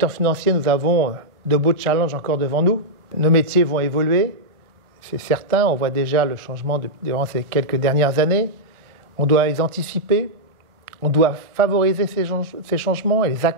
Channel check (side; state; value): left; late; 1.4 ms